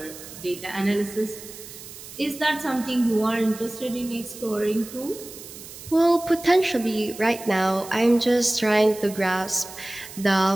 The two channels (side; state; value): right; noise; hiss, 15 dB below the sound